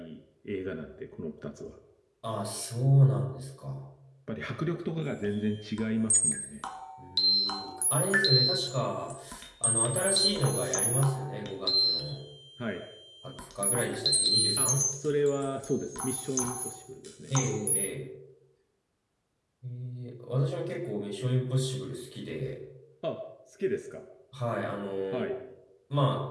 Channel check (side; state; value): both; identical; correlation 1.00